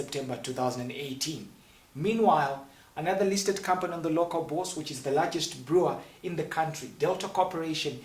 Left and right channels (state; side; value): identical; both; correlation 1.00